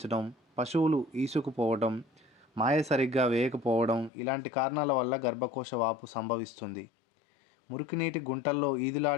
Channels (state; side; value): drops out; right; at 4.1 s